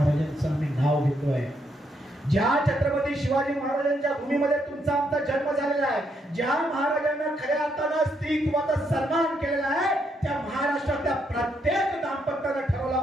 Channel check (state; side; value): normal; both; correlation 0.76